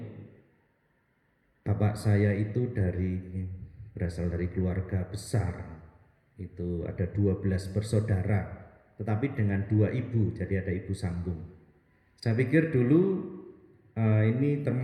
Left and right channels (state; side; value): identical; both; correlation 1.00